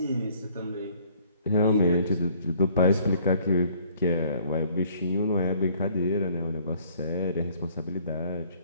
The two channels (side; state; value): both; inverted; correlation -0.59